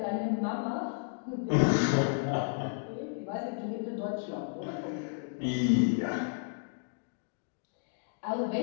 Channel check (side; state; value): right; silent; digital silence